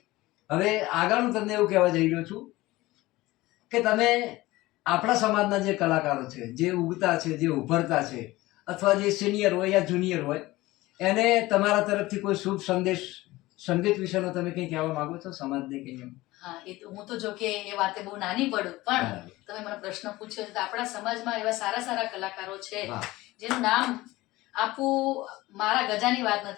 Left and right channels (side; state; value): right; quieter; 18.9 dB